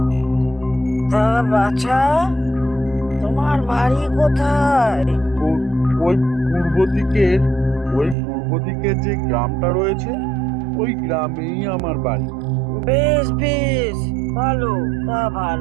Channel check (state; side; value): drops out; left; at 8.2 s